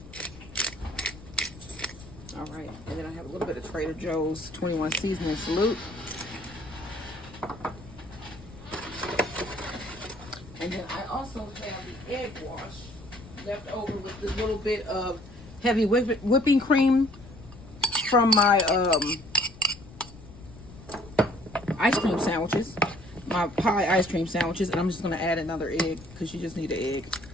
All right, and then I have a little bit of Trader Joe's 21 seasoning salute. And then I also have the egg wash left over with this little bit of heavy whipping cream from my ice cream sandwiches, my pie ice cream sandwiches, and I'm just going to add another egg because you just need an egg.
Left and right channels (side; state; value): left; noise; rumble, 18 dB below the sound